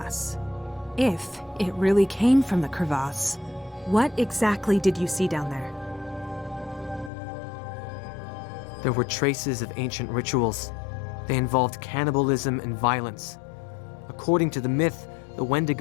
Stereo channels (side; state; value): right; drops out; at 7.1 s